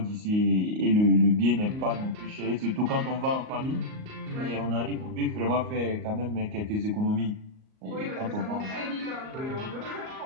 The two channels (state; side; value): late; left; 38 ms